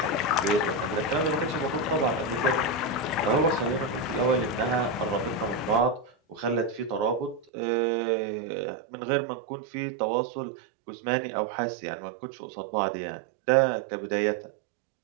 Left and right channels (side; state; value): left; drops out; at 7.5 s